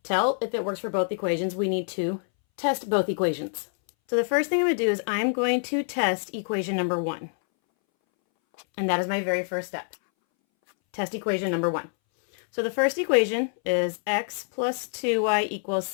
tell if it works for both equations, we need to test both equations. So the first thing I'm going to do is I'm going to test equation number 1. And that is my very first step. Test equation number 1. So the first equation is x plus 2y equals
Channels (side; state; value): right; silent; 61 dB below the other